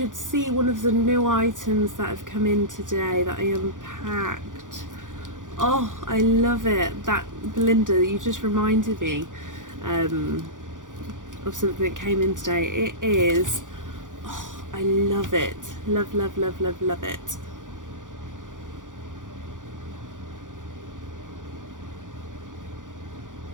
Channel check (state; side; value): late; left; 0.88 ms